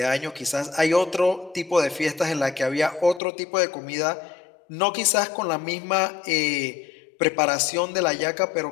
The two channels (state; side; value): drops out; right; at 3.2 s